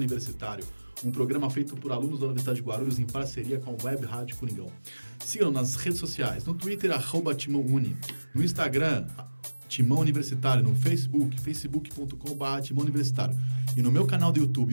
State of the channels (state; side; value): inverted; both; correlation -1.00